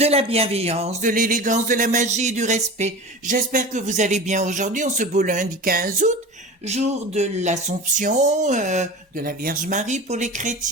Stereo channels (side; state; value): both; normal; correlation 0.33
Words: la bienveillance, de l'élégance, de la magie et du respect. J'espère que vous allez bien aujourd'hui, en ce beau lundi 15 août, jour de l'Assomption, de la Vierge Marie pour les